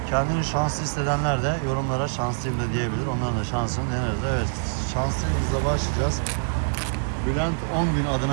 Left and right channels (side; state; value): left; silent; digital silence